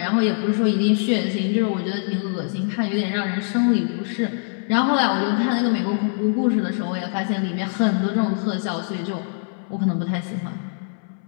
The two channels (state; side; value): silent; right; 64 dB below the other